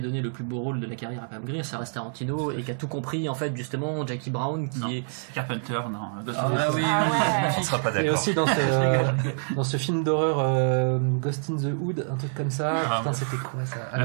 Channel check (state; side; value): silent; left; 61 dB below the other